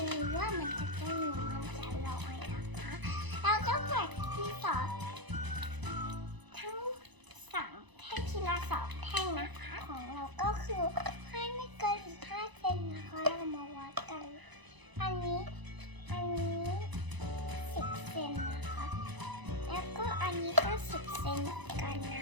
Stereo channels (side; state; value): left; late; 1.0 ms